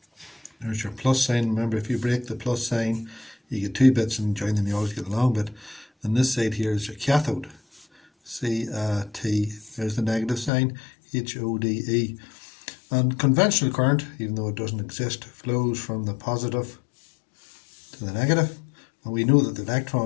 There's your plus sign. Remember, if you break the plus sign, you get two bits, and join them, you always get the long bit. And this side here is your cathode, C-A-T. There's the negative sign, H-O-D-E. And conventional current, even though it doesn't exist, flows from the positive to the negative. And we know that the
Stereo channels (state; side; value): drops out; right; at 10.5 s